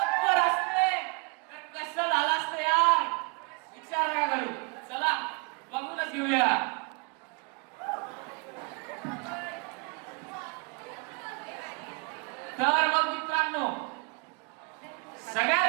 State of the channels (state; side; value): quieter; left; 32.0 dB